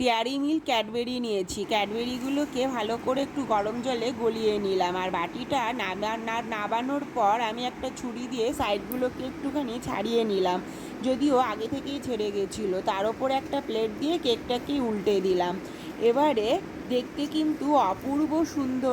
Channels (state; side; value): identical; both; correlation 1.00